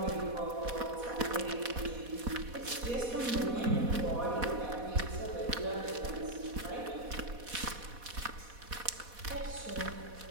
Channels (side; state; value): left; late; 4.1 ms